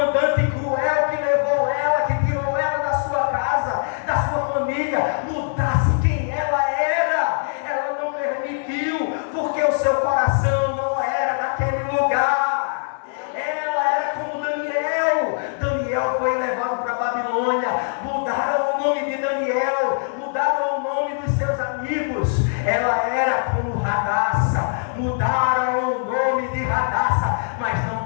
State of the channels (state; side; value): silent; right; digital silence